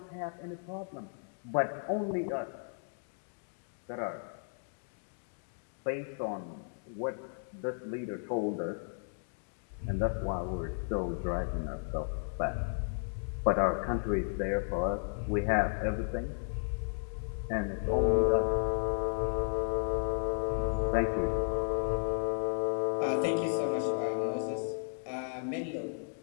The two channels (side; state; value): right; silent; digital silence